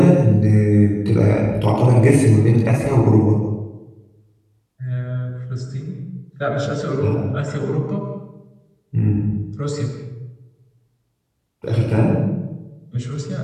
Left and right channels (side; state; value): both; identical; correlation 1.00